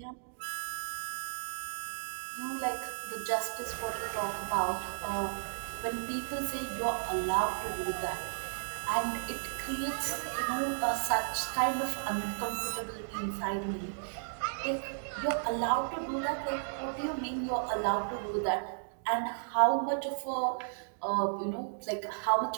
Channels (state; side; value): silent; left; digital silence